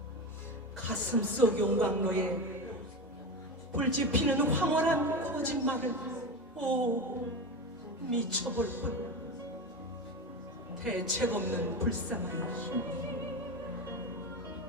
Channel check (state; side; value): normal; both; correlation 0.22